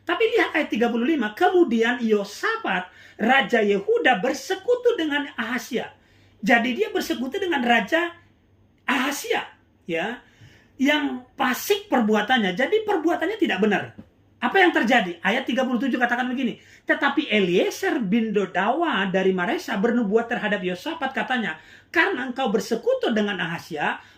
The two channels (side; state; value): both; identical; correlation 1.00